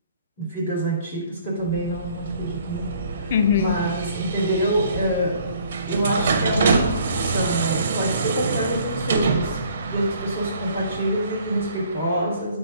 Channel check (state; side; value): inverted; both; correlation -0.58